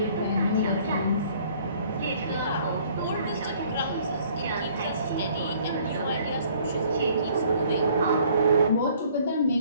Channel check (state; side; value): inverted; both; correlation -0.58